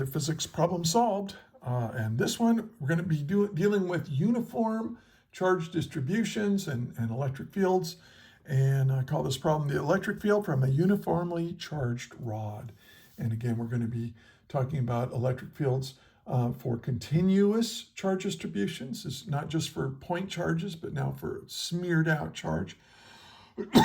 physics problem solved. And this one, we're going to be dealing with uniform charge distributions and electric fields. And I call this problem the electric field from a uniformly charged rod. And again, we're going to be talking about electric fields for continuous charge distributions. It's not just for point charges, but now for smeared out charge.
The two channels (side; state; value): both; identical; correlation 1.00